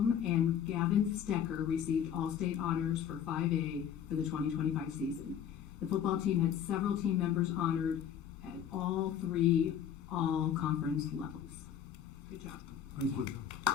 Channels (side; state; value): right; quieter; 9.0 dB